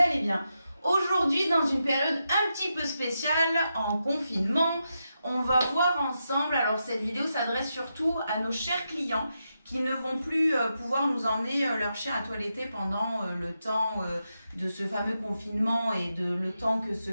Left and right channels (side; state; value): both; inverted; correlation -0.86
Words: bien. Aujourd'hui, dans une période un petit peu spéciale, en confinement, on va voir ensemble, alors cette vidéo s'adresse surtout à nos chers clients qui ne vont plus pouvoir nous emmener leur chien à toiletter pendant le temps de ce fameux confinement et le temps que ce